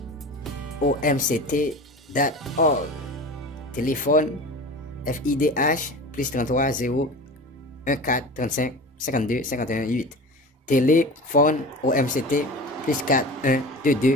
Téléphone FIDH +33 0 14 35 52 51 8. Téléphone OMCT +4 1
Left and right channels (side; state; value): both; normal; correlation 0.34